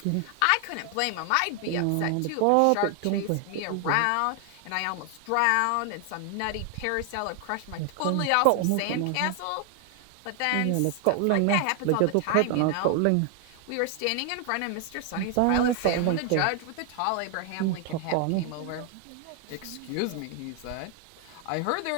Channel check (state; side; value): different; both; correlation 0.00